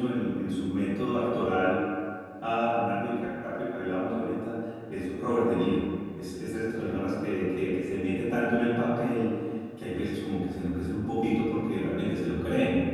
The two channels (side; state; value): both; identical; correlation 1.00